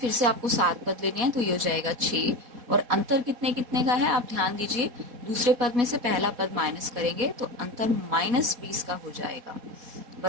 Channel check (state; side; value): late; left; 4.2 ms